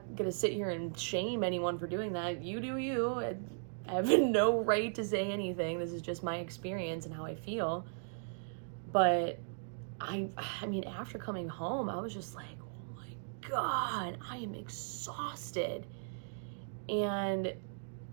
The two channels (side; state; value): left; silent; digital silence